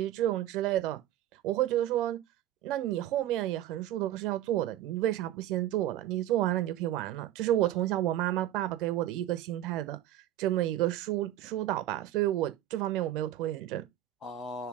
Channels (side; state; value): left; quieter; 12.9 dB